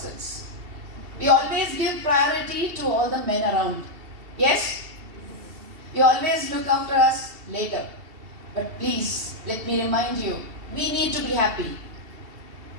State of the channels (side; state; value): left; late; 2.7 ms